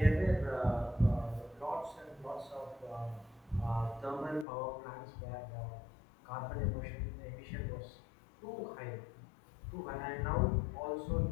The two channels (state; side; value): drops out; right; at 4.5 s